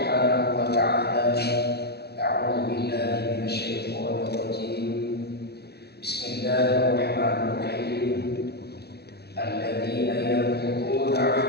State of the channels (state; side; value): late; right; 0.47 ms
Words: wa ta'ala, a'udzu billahi minasy syaithanir rajim. Bismillahirrahmanirrahim. Alladzina yanquduna